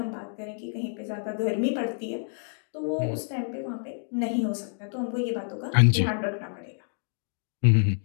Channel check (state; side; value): silent; right; digital silence